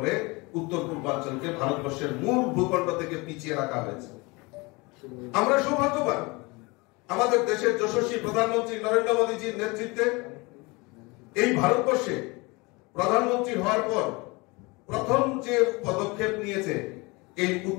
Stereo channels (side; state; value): right; quieter; 25.7 dB